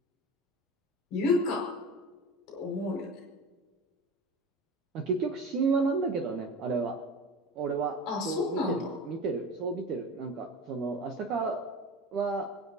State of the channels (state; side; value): normal; both; correlation 0.33